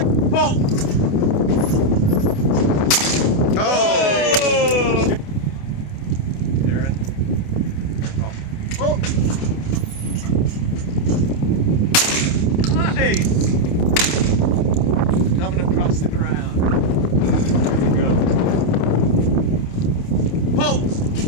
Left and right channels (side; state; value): right; late; 28 ms